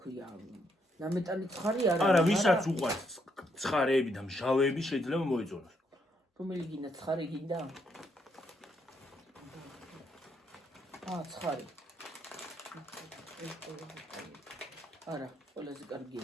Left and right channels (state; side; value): normal; both; correlation 0.75